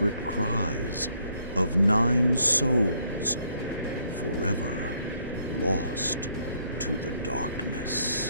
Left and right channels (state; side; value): inverted; both; correlation -0.69